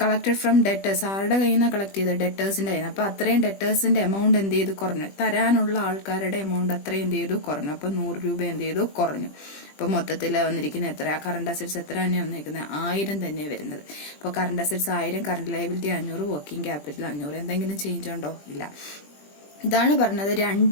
കളക്ടഡ് ഫ്രം ഡെറ്റേഴ്സ്, ആരുടെ കയ്യിൽ നിന്നാണ് കളക്ട് ചെയ്തത്, ഡെറ്റേഴ്സിന്റെ കയ്യിൽ നിന്ന്. അപ്പൊ അത്രയും ഡെറ്റേഴ്സിന്റെ എമൗണ്ട് എന്ത് ചെയ്തു, കുറഞ്ഞു. തരാനുള്ള ആൾക്കാരുടെ എമൗണ്ട് അത്രയും എന്ത് ചെയ്തു, കുറഞ്ഞു. അപ്പൊ 100 രൂപ എന്ത് ചെയ്തു, കുറഞ്ഞു. അപ്പൊ മൊത്തത്തിൽ വന്നിരിക്കുന്ന എത്ര, കറണ്ട് അസറ്റ്സ് എത്ര തന്നെയാണ് വന്നിരിക്കുന്നത്, 1000 തന്നെയാണ് വരുന്നത്. അപ്പോൾ current assets 1000, current liability 500, working capital 500. എന്തെങ്കിലും ചേഞ്ച് ഉണ്ടോ, ഇല്ല. ഇതാണ് പറഞ്ഞത്,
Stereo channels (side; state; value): right; late; 20 ms